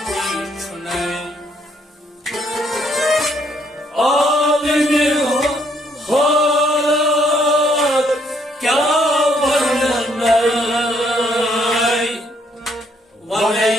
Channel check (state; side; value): normal; both; correlation 0.69